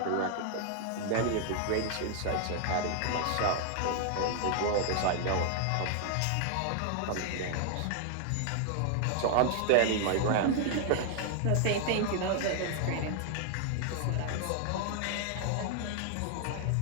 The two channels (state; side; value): different; both; correlation 0.00